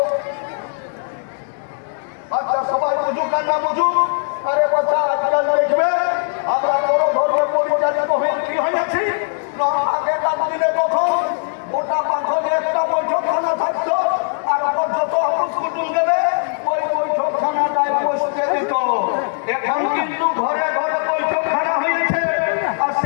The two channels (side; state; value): right; silent; 66 dB below the other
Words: আচ্ছা সবাই বুঝুক আর না বুঝুক, আরে বাচ্চা আজকাল দেখবে আমরা বড় ধর্মের পরিচালিত হয়ে কি হয়েছি। আগেকার দিনে তখন গোটা পাখনে একটা বৈঠকখানা থাকতো, আর যত অফিস কুটুম গেলে ওই বৈঠকখানাটায় বসতে দিত। এখন কিন্তু ঘরে ঘরে বৈঠকখানা হয়েছে, আর